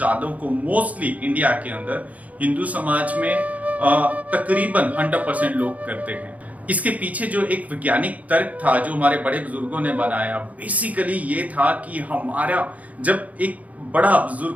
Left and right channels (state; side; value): late; left; 0.072 ms